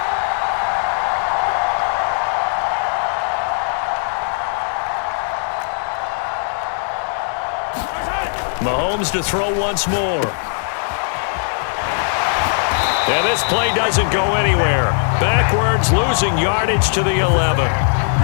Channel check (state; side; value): silent; right; digital silence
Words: Mahomes to throw once more. And this play doesn't go anywhere. Backwards, losing yardage to the 11.